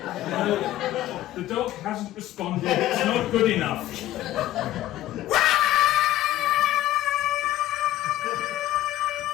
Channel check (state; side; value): quieter; right; 14.4 dB